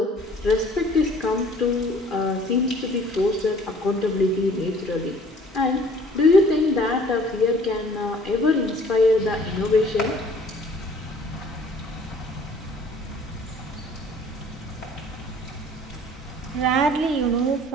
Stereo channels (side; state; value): both; normal; correlation 0.53